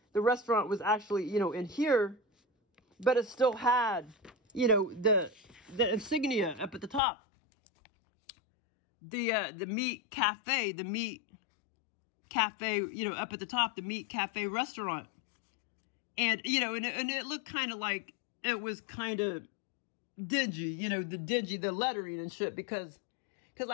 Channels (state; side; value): drops out; right; at 7.0 s